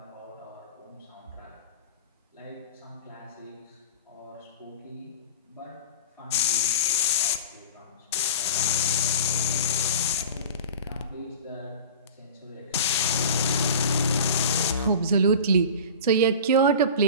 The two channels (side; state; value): both; inverted; correlation -0.34